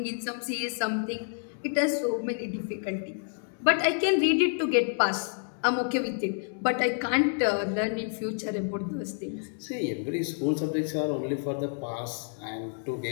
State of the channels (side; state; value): right; silent; 59 dB below the other